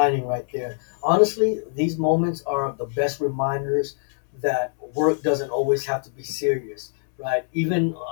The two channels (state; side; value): silent; right; 63 dB below the other